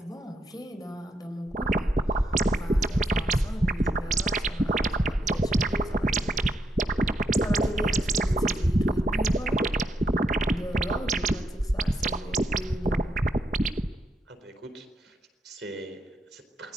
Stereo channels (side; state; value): both; normal; correlation 0.79